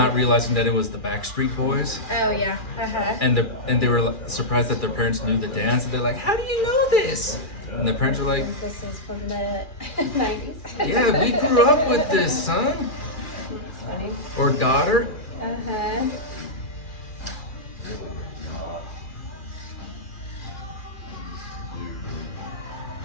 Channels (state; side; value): late; right; 2.4 ms